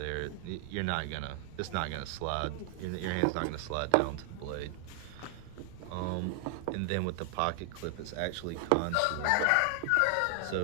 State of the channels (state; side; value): different; both; correlation 0.00